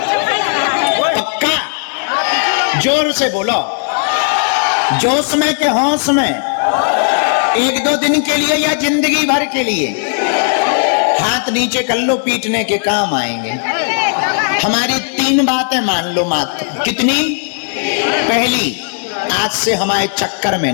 पक्का? जोर से बोलो। जोश में के होश में? 1-2 दिन के लिए या जिंदगी भर के लिए? हाथ नीचे कर लो, पीटने के काम आएंगे। हमारी 3 बातें मान लो मात्र। कितनी? पहली, आज से हमारे चक्कर में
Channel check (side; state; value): right; silent; 56 dB below the other